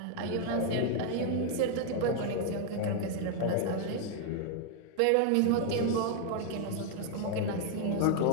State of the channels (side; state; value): both; different; correlation 0.00